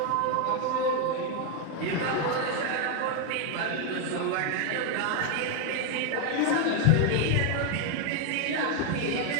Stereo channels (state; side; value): different; both; correlation 0.01